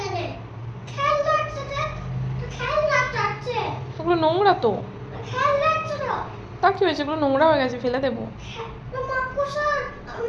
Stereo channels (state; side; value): identical; both; correlation 1.00